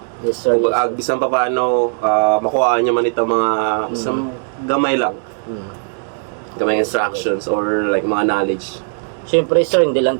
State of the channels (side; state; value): left; silent; 64 dB below the other